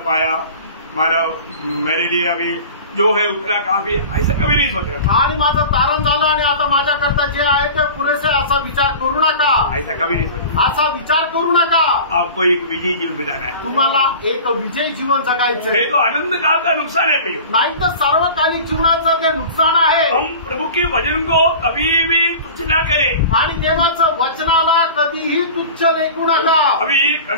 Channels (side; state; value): both; inverted; correlation -0.37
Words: पाया, मानव मेरे लिए अभी जो है उतना काफी, ऐसा कभी नहीं सोचा। आणि माझं तारण झालं आणि आता माझ्याकरता जे आहे ते पुरेसे, असा विचार करू नका, ऐसा कभी नहीं सोचा। असा विचार करू नका। आपको एक विजयी जीवन बिताना है, तुम्हाला एक विजयी जीवन जगायचं नहीं तो अनंत काल का नुकसान है भैया। नाही तर सर्वकालिक जीवनाचं ते नुकसान आहे। हम प्रभु के वचन को कभी भी तुच्छ ना करें, आणि देवाचं वचनाला कधीही तुच्छ लेखू नका। अभी